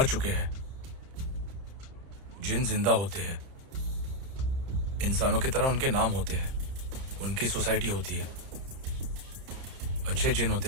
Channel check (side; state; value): left; late; 30 ms